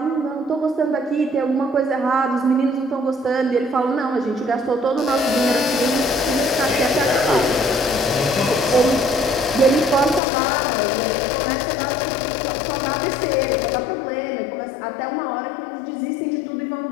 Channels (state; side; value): drops out; right; at 10.2 s